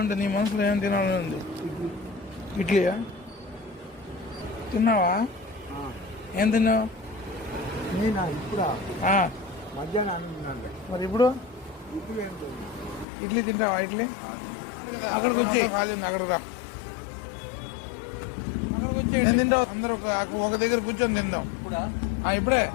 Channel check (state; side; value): drops out; right; at 13.1 s